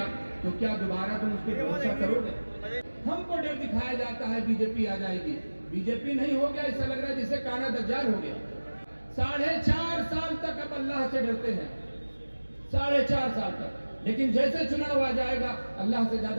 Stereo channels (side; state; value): both; inverted; correlation -1.00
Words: तो क्या दोबारा तुम उस पर भरोसा करोगे? हमको डर दिखाया जाता है बीजेपी आ जाएगी। बीजेपी नहीं हो गया, ऐसा लग रहा है जिससे काना दज्जाल हो गया। 4.5 साल तक अब अल्लाह से डरते हैं, 4.5 साल तक। लेकिन जैसे चुनाव आ जाएगा अल्लाह से